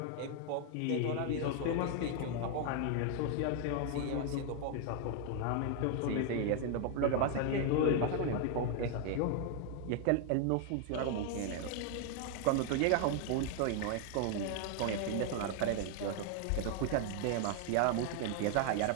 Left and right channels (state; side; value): different; both; correlation 0.00